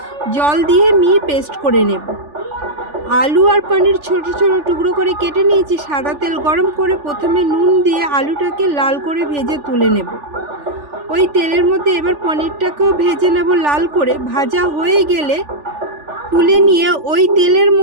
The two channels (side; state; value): left; late; 3.4 ms